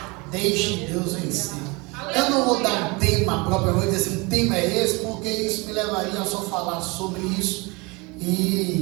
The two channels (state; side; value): quieter; left; 26.7 dB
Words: Deixe Deus vencer. Eu não vou dar um tema propriamente, dizer assim, um tema é esse, porque isso me levaria a só falar sobre isso,